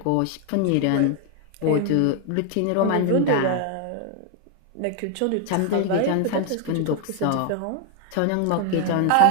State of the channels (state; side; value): different; both; correlation 0.00